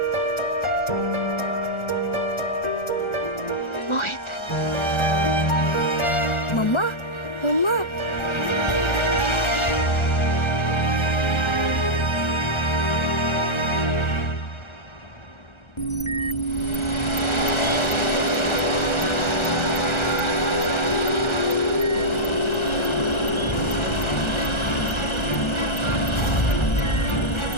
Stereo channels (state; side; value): late; right; 1.3 ms